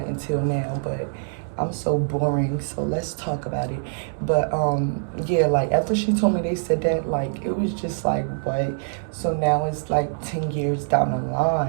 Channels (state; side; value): silent; left; digital silence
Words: until now, but I'm so boring, so let's talk about it. But, yeah, like, after she told me they said that, like, it was just like, what? So now it's, like, 10 years down the